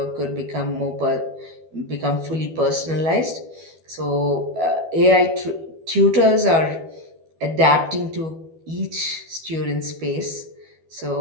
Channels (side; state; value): left; late; 12 ms